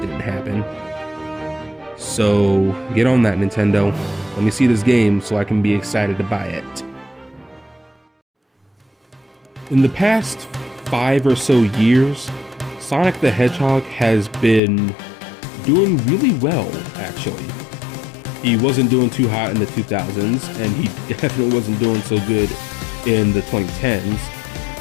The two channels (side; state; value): right; drops out; at 14.6 s